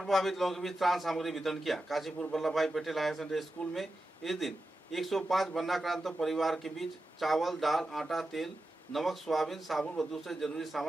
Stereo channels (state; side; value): normal; both; correlation 0.91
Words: लोगों के बीच त्राण सामग्री वितरण किया। काशीपुर वल्लभ भाई पटेल हायर सेकेंडरी स्कूल में इस दिन 105 वन्नाक्रांत परिवार के बीच चावल, दाल, आटा, तेल, नमक, सोयाबीन, साबुन व दूसरे जरूरी